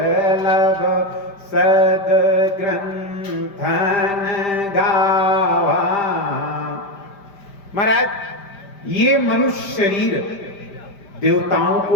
सद ग्रंथन गावा। महाराज, ये मनुष्य शरीर देवताओं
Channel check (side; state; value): right; late; 5.0 ms